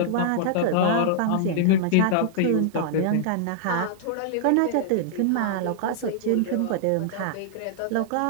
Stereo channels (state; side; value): different; both; correlation -0.01